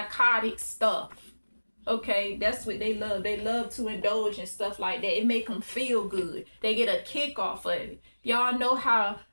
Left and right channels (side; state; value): both; inverted; correlation -1.00